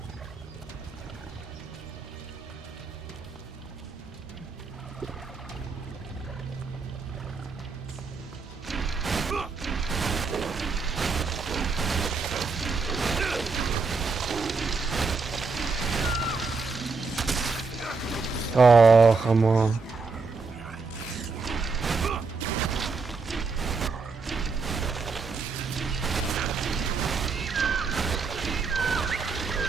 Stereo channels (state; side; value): quieter; left; 4.5 dB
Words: Oh, come on.